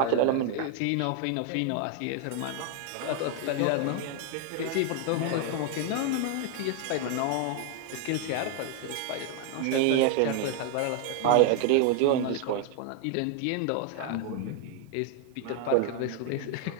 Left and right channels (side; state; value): both; different; correlation 0.00